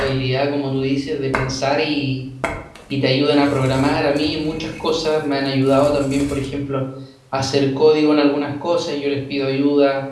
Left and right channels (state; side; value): identical; both; correlation 1.00